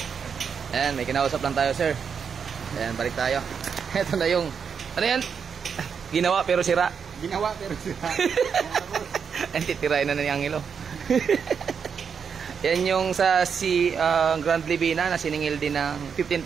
ayan, may kinausap lang tayo, sir. Ayan, balik tayo. Ito na yung, ano yan? Ginawa pero sira. Ginawa pero sira. Ayan, titirain na ni Angelo. Yan yung sa si Grand Libina na siningil din ng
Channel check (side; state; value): left; quieter; 6.6 dB